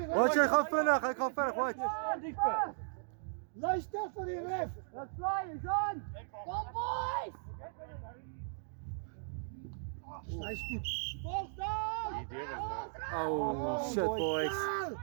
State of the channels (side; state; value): left; silent; digital silence